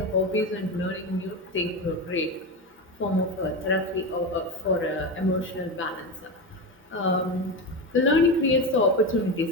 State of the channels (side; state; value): both; normal; correlation 0.19